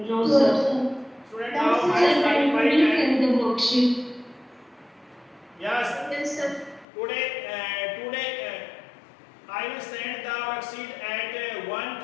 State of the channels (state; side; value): drops out; right; at 6.9 s